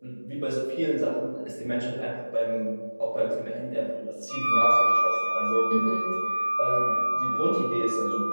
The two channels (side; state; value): both; inverted; correlation -1.00